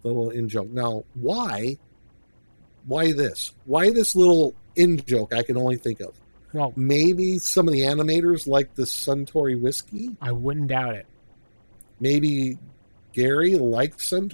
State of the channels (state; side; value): inverted; both; correlation -1.00